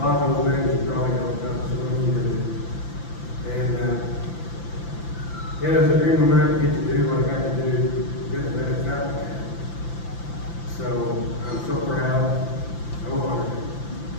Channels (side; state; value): right; late; 5.9 ms